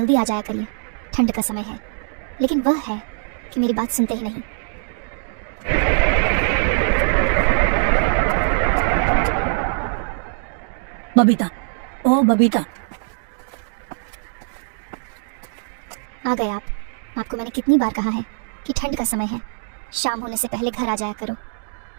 आ जाया करिए, ठंड का समय है, लेकिन वह है कि मेरी बात सुनते ही नहीं। बबीता, ओ बबीता। आ गए आप। आपको मैंने कितनी बार कहा है कि ठंड का समय है, शाम होने से पहले घर आ जाया करो।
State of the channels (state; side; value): silent; left; digital silence